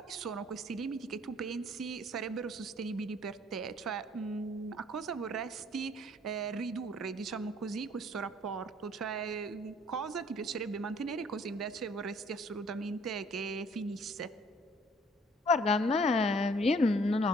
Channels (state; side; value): normal; both; correlation 0.59